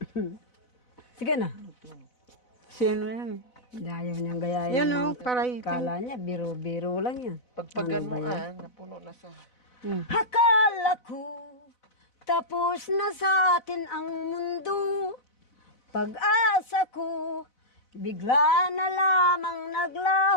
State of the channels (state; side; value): late; right; 4.0 ms